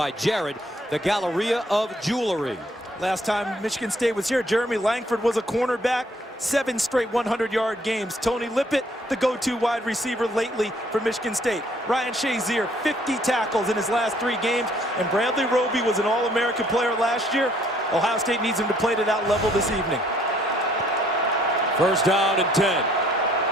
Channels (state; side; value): normal; both; correlation 0.63